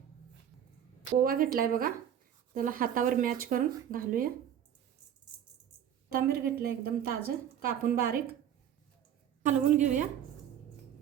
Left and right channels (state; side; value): quieter; left; 9.7 dB